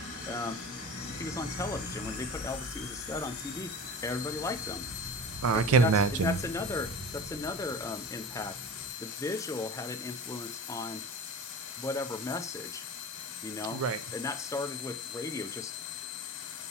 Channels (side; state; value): both; normal; correlation 0.33